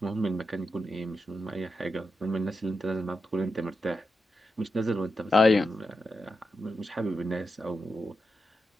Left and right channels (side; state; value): both; normal; correlation 0.88